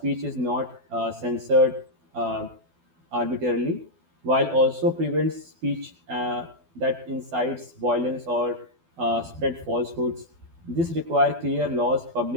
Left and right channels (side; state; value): left; late; 12 ms